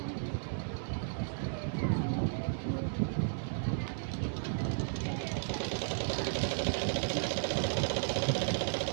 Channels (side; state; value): left; silent; digital silence